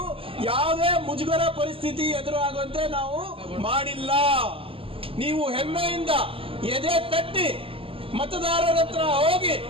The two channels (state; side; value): late; left; 0.26 ms